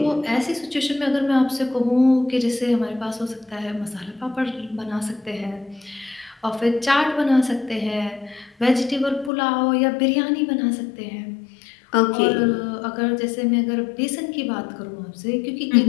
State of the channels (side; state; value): right; drops out; at 9.3 s